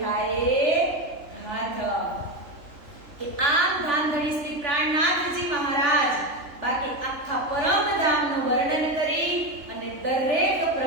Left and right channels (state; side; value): late; left; 3.5 ms